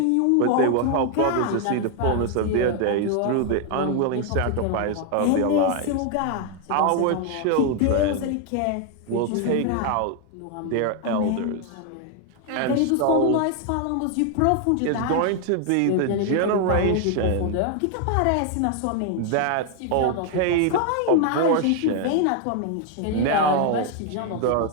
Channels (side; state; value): both; different; correlation 0.00